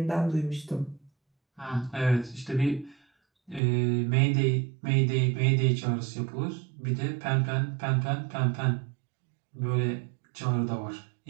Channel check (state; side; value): drops out; left; at 3.6 s